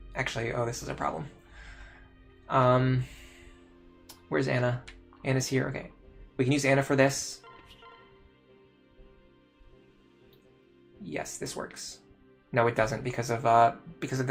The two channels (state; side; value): identical; both; correlation 1.00